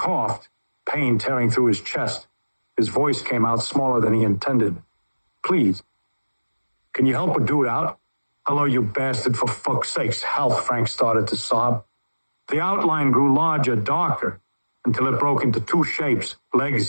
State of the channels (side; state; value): both; inverted; correlation -1.00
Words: pain tearing through his chest. His voice came out smaller than he intended. Please. Can you help a dude out? Hello, you bastard, for fuck's sakes. Help, Frank started to sob. The outline grew larger, darker, until it broke into two shapes,